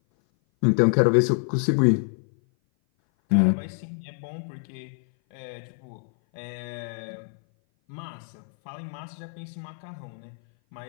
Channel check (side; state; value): right; silent; 57 dB below the other